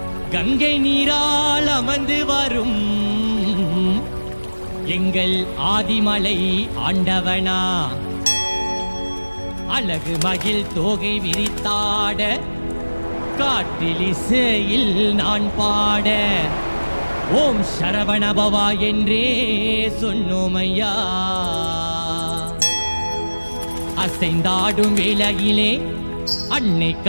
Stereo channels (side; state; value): both; inverted; correlation -1.00